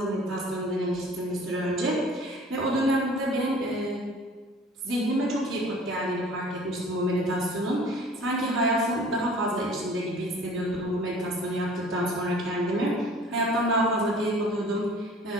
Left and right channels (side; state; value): both; normal; correlation 0.48